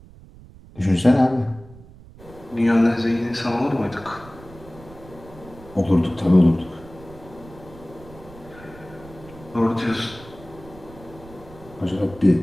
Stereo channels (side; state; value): right; noise; rumble, 20 dB below the sound